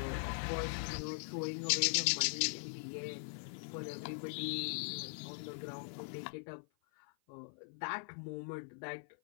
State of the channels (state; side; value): silent; right; 51 dB below the other